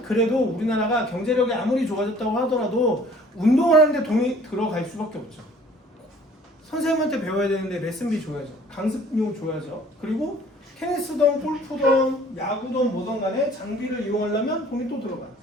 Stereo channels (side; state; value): both; normal; correlation 0.53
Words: 그래도 우리나라가 경제력이 아무리 좋아졌다고 하더라도 운동을 하는데 돈이 들어갈 수밖에 없죠. 선생님한테 배워야 되는데 레슨비 줘야죠. 강습료 줘야죠. 그리고 테니스든 골프든 야구든 뭐든 간에 장비를 이용하려면 돈이 또 들어가.